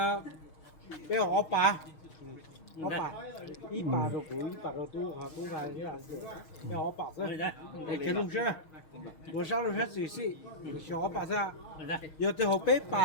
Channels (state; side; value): late; right; 6.4 ms